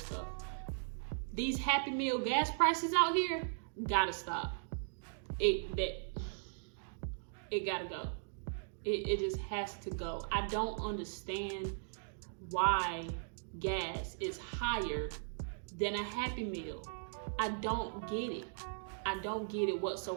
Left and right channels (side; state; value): left; silent; digital silence